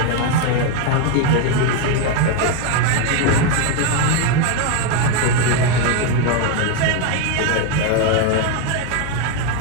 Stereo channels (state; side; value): different; both; correlation 0.01